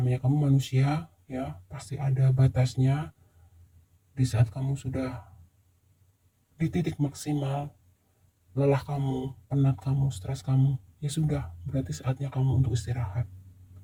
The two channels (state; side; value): identical; both; correlation 1.00